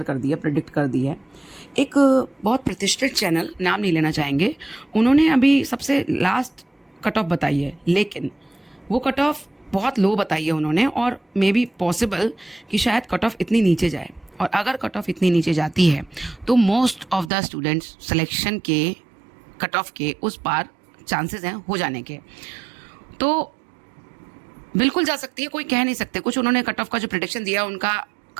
कर दी है, प्रेडिक्ट कर दी है। एक बहुत प्रतिष्ठित चैनल, नाम नहीं लेना चाहेंगे, उन्होंने अभी सबसे लास्ट कट ऑफ बताई है, लेकिन वो कट ऑफ बहुत लो बताई है उन्होंने, और मे बी पॉसिबल कि शायद कट ऑफ इतनी नीचे जाए। और अगर कट ऑफ इतनी नीचे जाती है तो most of the students selection के कट ऑफ के उस पार चांसेस हैं हो जाने के। तो बिल्कुल जा सकती है, कोई कह नहीं सकते। कुछ उन्होंने कट ऑफ का जो प्रेडिक्शन दिया उनका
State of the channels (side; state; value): left; drops out; at 17.3 s